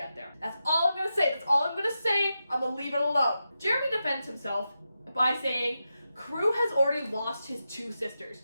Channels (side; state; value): both; inverted; correlation -0.89